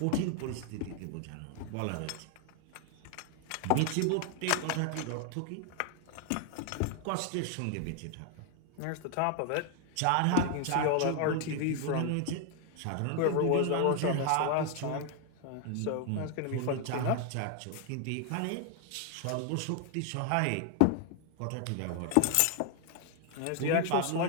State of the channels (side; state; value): both; different; correlation 0.00